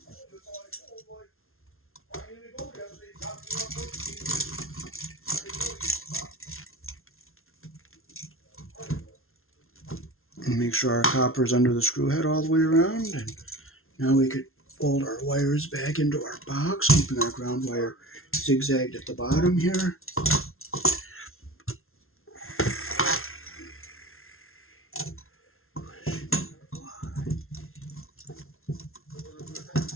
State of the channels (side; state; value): right; late; 0.62 ms